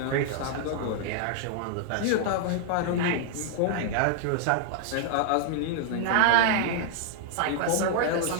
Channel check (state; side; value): different; both; correlation 0.00